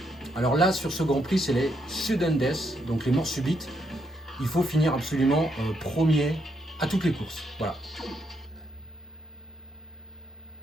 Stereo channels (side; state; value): both; normal; correlation 0.77